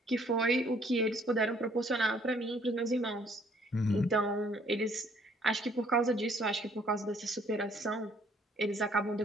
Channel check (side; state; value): both; normal; correlation 0.62